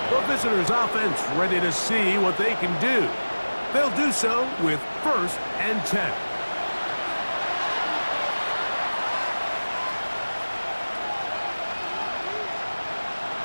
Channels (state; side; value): inverted; both; correlation -1.00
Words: The visitors' offense ready to see what they can do. They'll do so with 1st and 10.